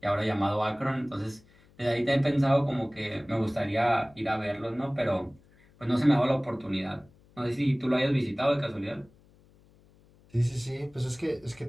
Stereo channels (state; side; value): noise; left; hum, 29 dB below the sound